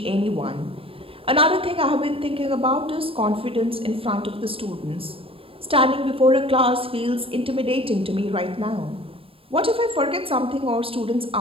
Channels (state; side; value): late; left; 0.27 ms